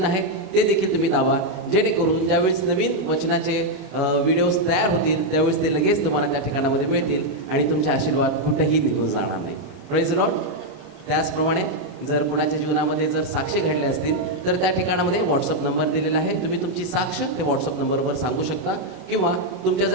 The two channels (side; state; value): left; late; 33 ms